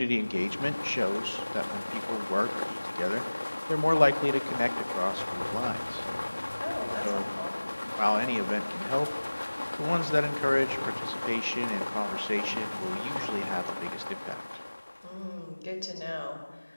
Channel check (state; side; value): inverted; both; correlation -1.00